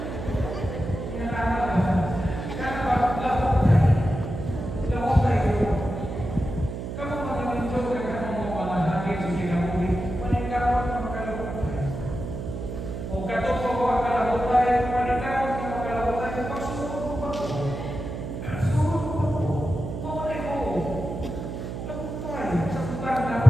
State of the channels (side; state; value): right; noise; hum, 6 dB below the sound